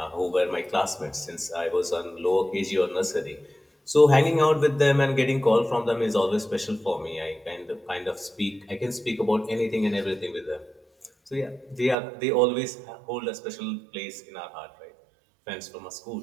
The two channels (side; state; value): left; drops out; at 12.0 s